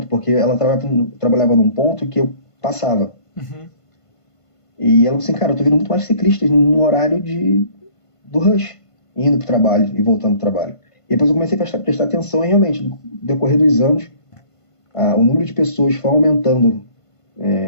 porque ela trabalhava num ponto que eu passava. Uhum. E ela falou assim, cara, eu tô vendo muito mais ciclistas no horário do rush, indo pro trabalho e voltando pro trabalho. E depois eu comecei a prestar atenção e realmente, no decorrer dos anos, o número de pessoas foi aumentando,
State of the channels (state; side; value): late; right; 1.5 ms